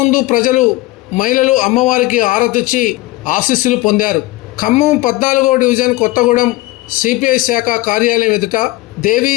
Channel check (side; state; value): right; quieter; 19.2 dB